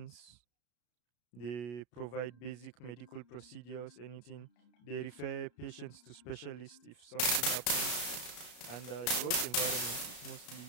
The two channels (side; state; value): right; late; 33 ms